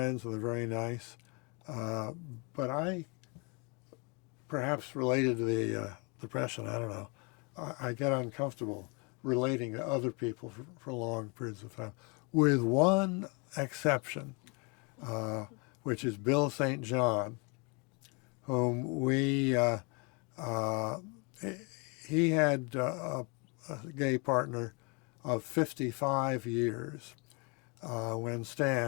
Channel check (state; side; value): quieter; right; 31.7 dB